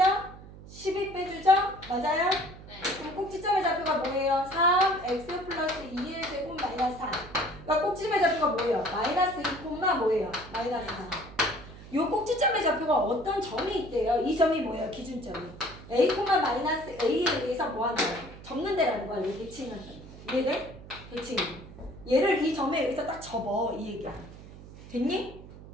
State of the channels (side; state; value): right; noise; hum, 17 dB below the sound